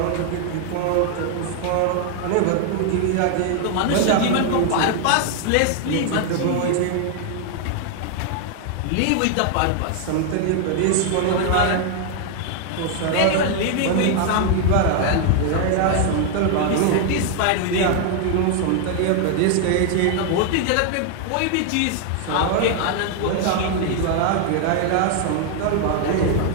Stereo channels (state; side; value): different; both; correlation 0.00